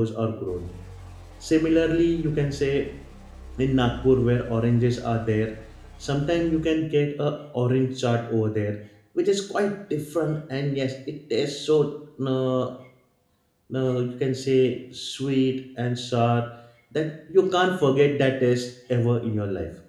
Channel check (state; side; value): identical; both; correlation 1.00